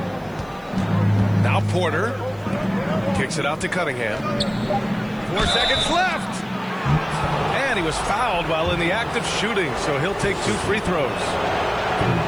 Now Porter. Kicks it out to Cunningham. 4 seconds left. And he was fouled while in the act of shooting, so he'll take 2 free throws.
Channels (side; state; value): right; noise; hiss, 30 dB below the sound